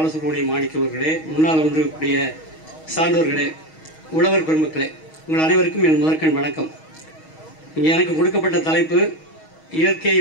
மாணிக்க அவர்களே, முன்னால் வந்திருக்கக்கூடிய சான்றோர்களே, உழவர் பெருமக்களே, உங்கள் அனைவருக்கும் என் முதற்கண் வணக்கம். இங்கே எனக்கு கொடுக்கப்பட்ட தலைப்பு இயற்கை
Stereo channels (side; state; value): right; late; 6.3 ms